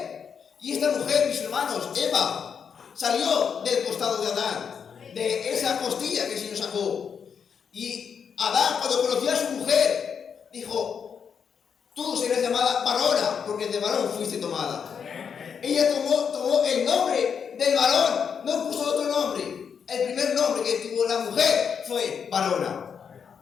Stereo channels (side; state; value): right; quieter; 6.9 dB